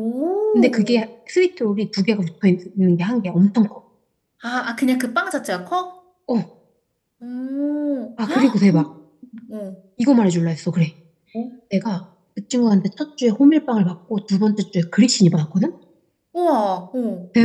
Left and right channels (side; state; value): both; identical; correlation 1.00